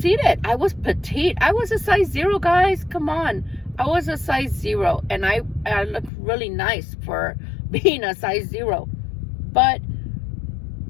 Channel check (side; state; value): right; drops out; at 6.1 s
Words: I was petite. I was a size 0, guys. Come on. I was a size 0, and I looked really nice for being a size 0. But